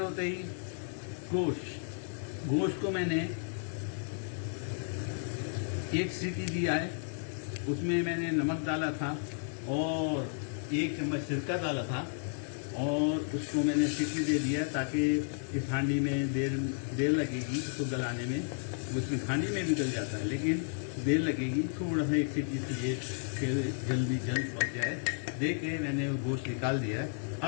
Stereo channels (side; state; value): right; silent; digital silence